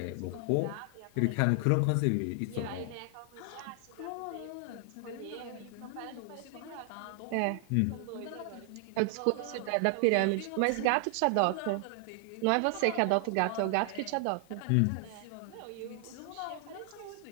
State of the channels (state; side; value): different; both; correlation 0.00